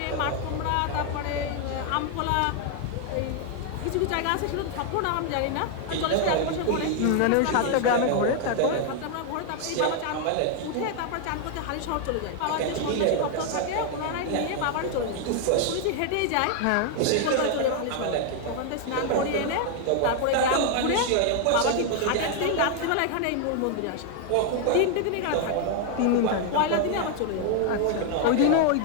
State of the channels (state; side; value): different; both; correlation 0.00